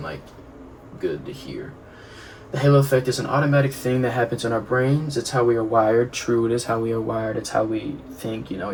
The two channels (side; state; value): both; identical; correlation 1.00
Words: like good to hear. The halo effect is an automatic thing that happens in our brains. It's how we are wired. True, it is how we are wired. It's how we think. You know,